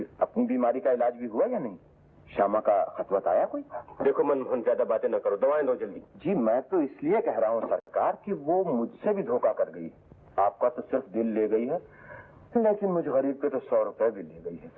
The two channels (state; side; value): identical; both; correlation 1.00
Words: अपनी बीमारी का इलाज भी हुआ या नहीं? श्यामा का खतवत आया कोई? देखो मनमोहन, ज्यादा बातें न करो, दवाएं दो जल्दी। जी, मैं तो इसलिए कह रहा हूँ सरकार कि वो मुझसे भी धोखा कर गई। आपका तो सिर्फ दिल ले गई है, लेकिन मुझ गरीब के तो 100 रुपए भी ले गई है